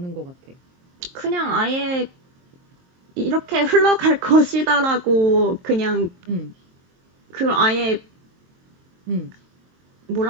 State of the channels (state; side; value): late; left; 23 ms